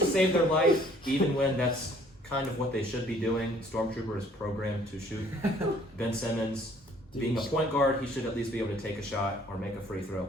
save their life, even when that's kind of what they should be doing. Stormtrooper is programmed to shoot. Ben Simmons, being a point guard, he should at least be able to take a shot or make a free throw,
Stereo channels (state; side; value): normal; both; correlation 0.59